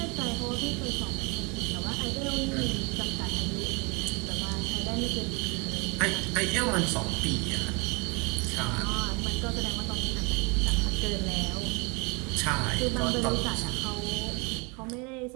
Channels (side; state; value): left; quieter; 29.8 dB